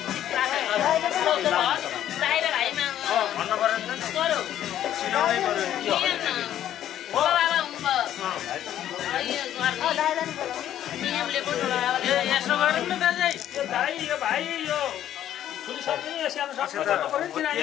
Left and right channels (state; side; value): quieter; right; 11.4 dB